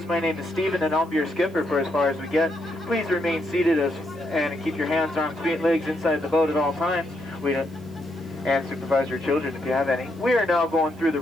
My name is Steven and I'll be your skipper for as far as we get. Please remain seated and keep your hands, arms, feet, and legs inside the boat at all times. And supervise your children if you have any. We are now going through the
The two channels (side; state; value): right; noise; hiss, 28 dB below the sound